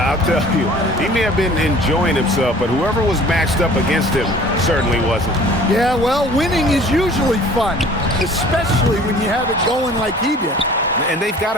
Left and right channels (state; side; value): normal; both; correlation 0.49